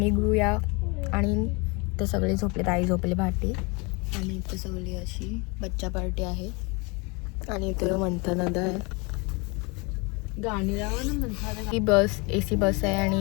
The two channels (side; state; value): right; quieter; 28.9 dB